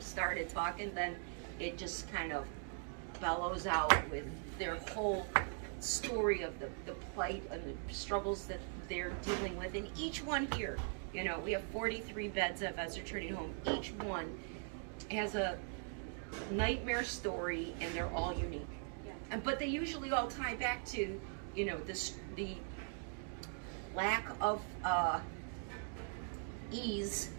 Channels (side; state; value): left; silent; 50 dB below the other